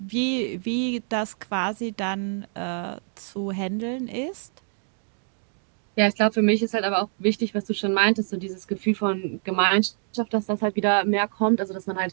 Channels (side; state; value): left; silent; 61 dB below the other